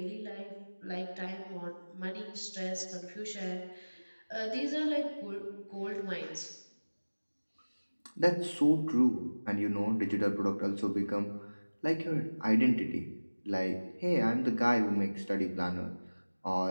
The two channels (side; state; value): both; inverted; correlation -1.00